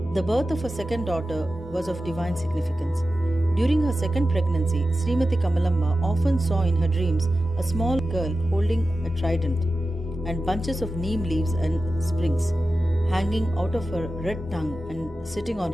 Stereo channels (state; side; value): normal; both; correlation 0.93